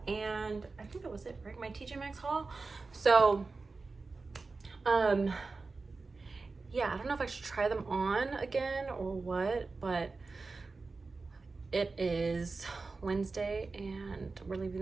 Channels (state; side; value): quieter; left; 3.9 dB